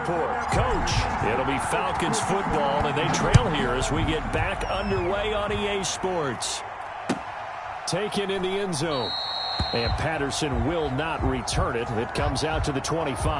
Coach, it'll be Falcons football, and they trail here as we get back underway on EA Sports. Taken in the end zone. And Patterson will not return it. It comes out to the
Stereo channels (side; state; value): both; identical; correlation 1.00